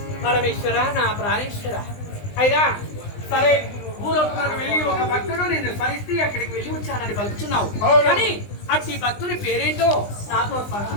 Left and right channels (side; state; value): right; late; 20 ms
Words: పరమేశ్వర నా ప్రాణేశ్వర అయినా సరే భూలోకములకు వెళ్ళి ఒక భక్తుడు నిన్ను స్మరిస్తే అక్కడికి వెళ్ళి వచ్చానని పలుకుతున్నావు. కానీ అట్టి భక్తుని పేరేంటో నాతో